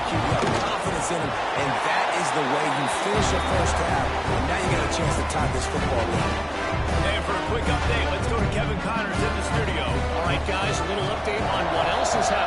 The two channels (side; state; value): both; identical; correlation 1.00